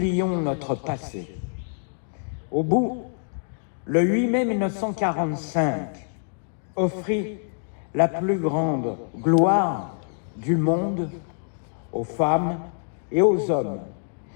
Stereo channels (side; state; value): right; silent; digital silence